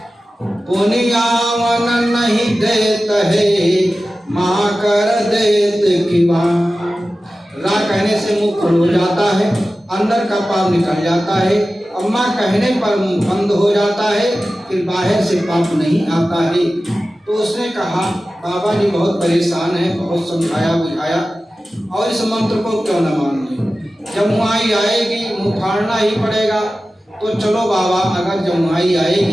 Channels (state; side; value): normal; both; correlation 0.95